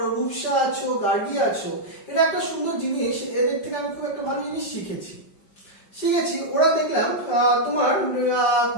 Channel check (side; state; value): right; late; 5.2 ms